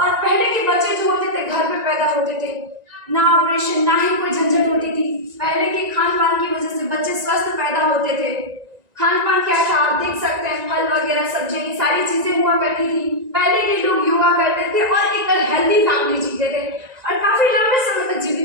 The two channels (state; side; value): late; left; 1.9 ms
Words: पहले के बच्चे जो होते थे घर पे पैदा होते थे, ना ऑपरेशन ना ही कोई झंझट होती थी। पहले के खान पान की वजह से बच्चे स्वस्थ पैदा होते थे। खान पान क्या था आप देख सकते हैं, फल वगैरह सब्जियां, ये सारी चीजें हुआ करती थी। पहले के लोग योगा करते थे और एक हेल्दी फैमिली जीते थे और काफी लंबे समय तक